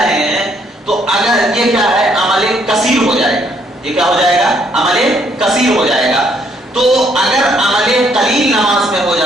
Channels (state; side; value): normal; both; correlation 0.68